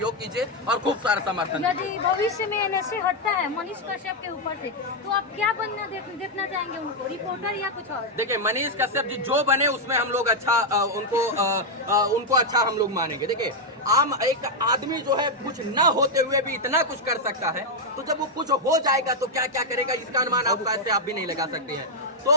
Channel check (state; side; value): normal; both; correlation 0.00